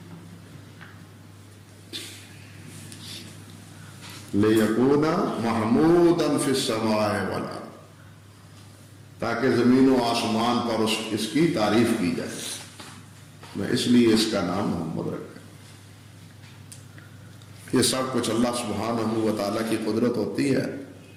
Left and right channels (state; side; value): identical; both; correlation 1.00